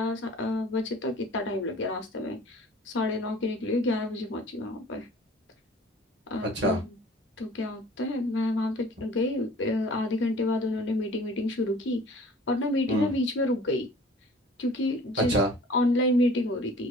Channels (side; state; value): both; normal; correlation 0.48